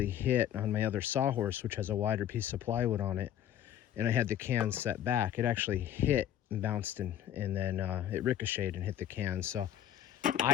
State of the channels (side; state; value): right; quieter; 10.9 dB